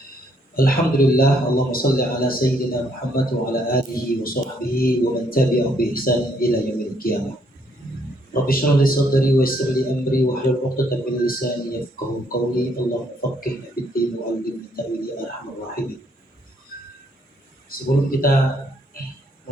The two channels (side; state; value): both; normal; correlation 0.70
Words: Alhamdulillah, Allahumma salli ala Sayyidina Muhammad wa ala alihi wa sahbihi wa man tabi'ahum bi ihsan ila yaumil qiyamah. Rabbi shrah li sadri wa yassir li amri wa hlul 'uqdatam min lisani yafqahu qawli. Allahumma faqqihna fid din wa 'allimna ta'wil ya arhamar rahimin. Sebelum kita